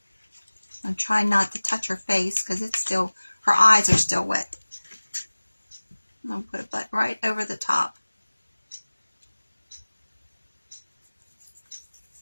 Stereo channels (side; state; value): both; inverted; correlation -1.00